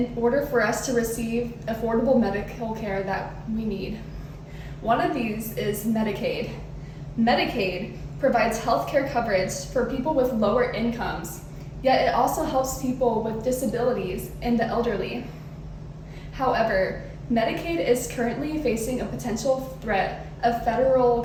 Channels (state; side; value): identical; both; correlation 1.00